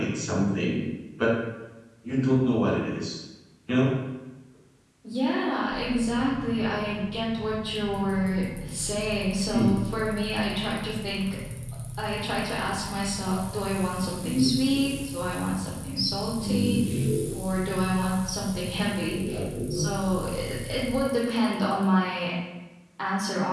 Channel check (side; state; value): both; identical; correlation 1.00